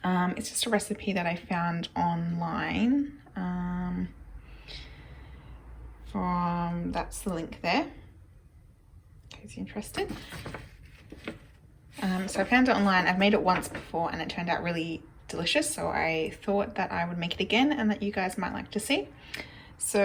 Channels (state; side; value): identical; both; correlation 1.00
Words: It's just a recipe that I found online. That's the link there, in case you're interested. So I found it online. I've made it once before and it turned out really delicious, so I thought that I would make it again and that you guys might like to see.